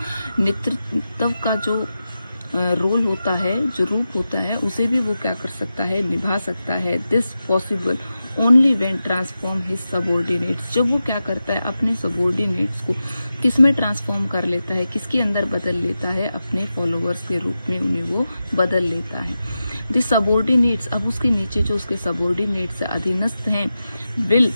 नेतृत्व का जो रोल होता है, जो रूप होता है, उसे भी वो क्या कर सकता है, निभा सकता है। This possible only when transform his subordinates, जब वो क्या करता है, अपने सबॉर्डिनेट्स को किस में ट्रांसफॉर्म कर लेता है, किसके अंदर बदल लेता है, अपने फॉलोअर्स के रूप में उन्हें वो बदल लेता है। द सबॉर्डिनेट्स, अब उसके नीचे जो उसके सबॉर्डिनेट्स है, अधीनस्थ हैं, विल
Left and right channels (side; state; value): both; inverted; correlation -0.91